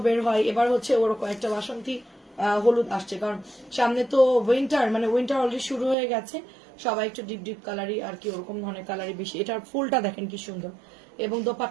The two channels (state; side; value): drops out; left; at 6.0 s